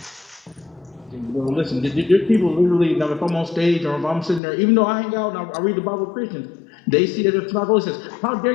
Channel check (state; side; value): drops out; right; at 4.4 s